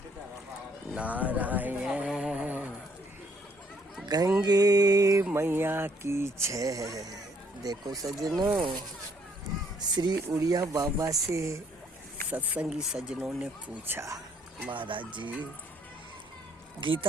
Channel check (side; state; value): both; normal; correlation 0.67